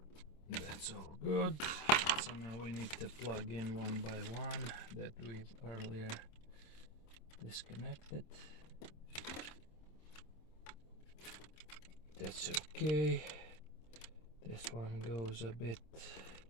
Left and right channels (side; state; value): right; late; 26 ms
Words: That's all good. So now we need to plug in one by one that we've earlier disconnected. That's okay. This one goes a bit